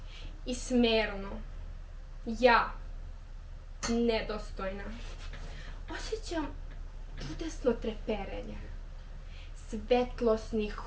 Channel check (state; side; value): identical; both; correlation 1.00